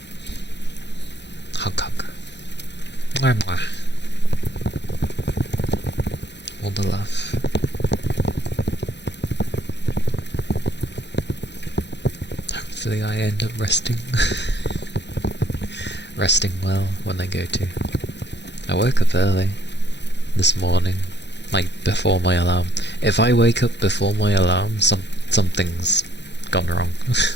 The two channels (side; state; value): right; late; 0.51 ms